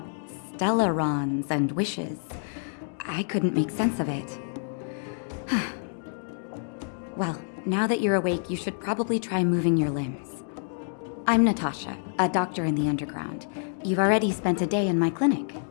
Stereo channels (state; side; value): silent; right; digital silence